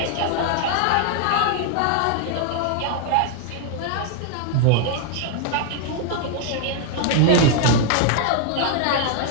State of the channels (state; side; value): different; both; correlation 0.00